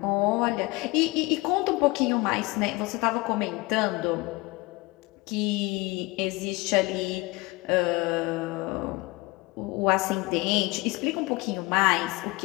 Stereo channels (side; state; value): right; quieter; 23.1 dB